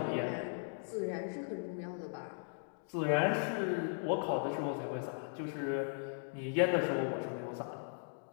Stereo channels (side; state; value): right; silent; digital silence